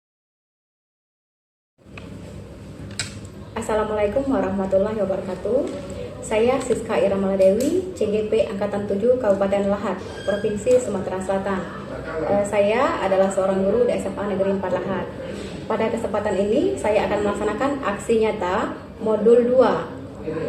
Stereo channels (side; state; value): both; identical; correlation 1.00